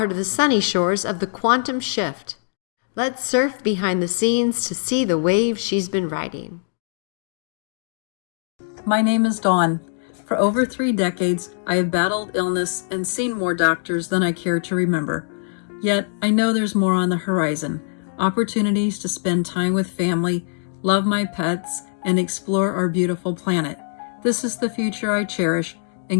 to the sunny shores of the quantum shift? Let's surf behind the scenes to see the waves she's been riding. My name is Dawn. For over 3 decades, I have battled illness and seen more doctors than I care to remember. Yet, I know there's more on the horizon. Opportunities to spend time with family, love my pets, and explore our beautiful planet. This is the future I cherish,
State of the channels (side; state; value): right; silent; digital silence